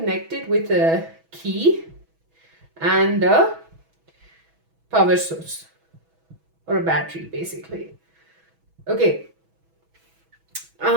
with a key and a power source or a battery basically. Okay.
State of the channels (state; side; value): late; left; 6.1 ms